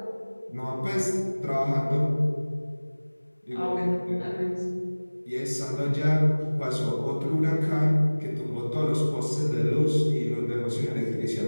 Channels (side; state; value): both; inverted; correlation -1.00